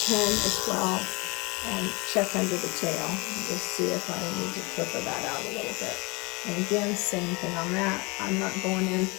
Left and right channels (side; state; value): right; quieter; 26.8 dB